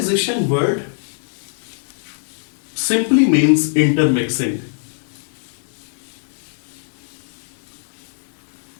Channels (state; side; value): silent; right; digital silence